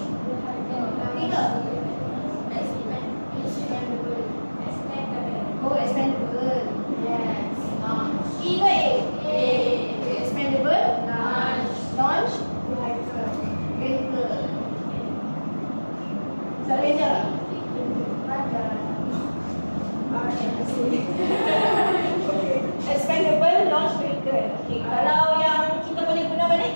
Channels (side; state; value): both; inverted; correlation -1.00